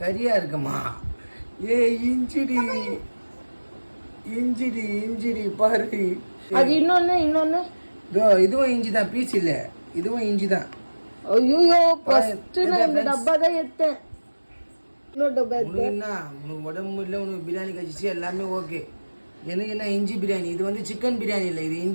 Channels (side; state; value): both; inverted; correlation -1.00